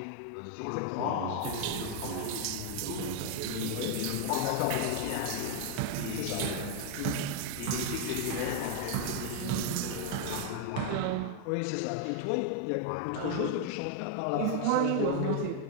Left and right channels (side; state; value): both; different; correlation 0.00